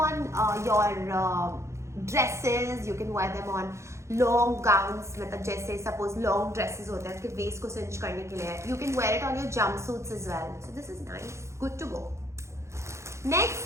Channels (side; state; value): left; late; 0.14 ms